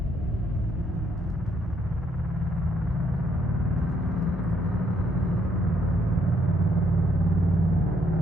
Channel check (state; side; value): normal; both; correlation 0.71